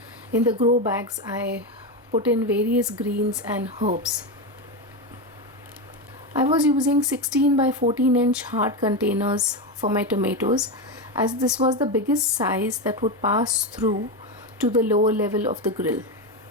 in the grow bags I put in various greens and herbs. I was using 16 by 14 inch hard containers for my tomatoes, as this was the biggest size that would pass through to the lower level of the grill.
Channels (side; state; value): both; normal; correlation 0.14